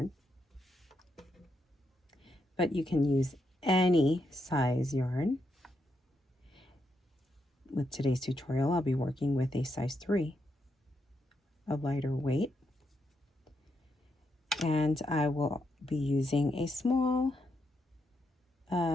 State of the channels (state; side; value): normal; both; correlation 0.81